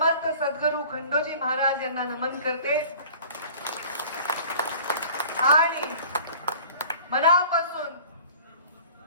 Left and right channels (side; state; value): both; inverted; correlation -0.45